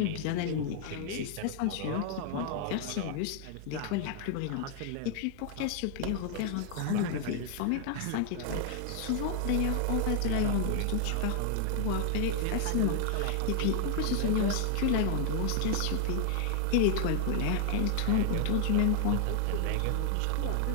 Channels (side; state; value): both; different; correlation 0.00